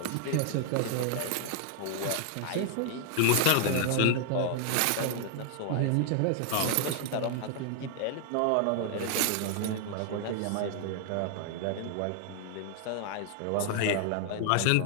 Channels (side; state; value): both; different; correlation 0.00